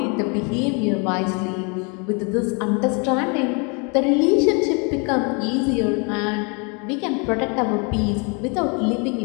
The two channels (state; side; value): quieter; right; 32.7 dB